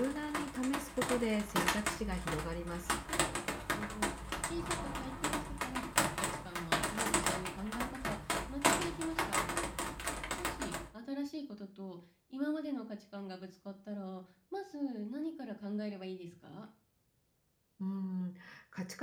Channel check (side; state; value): both; identical; correlation 1.00